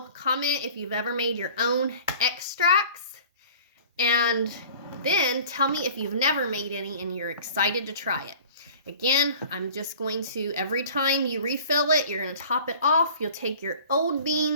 comment if you've ever made your own extracts, and then tell me if you've never made any and you're excited to try it. Again, I'm just going to, every time you refill it, you're going to top it off. You'll take your old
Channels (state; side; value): inverted; both; correlation -0.45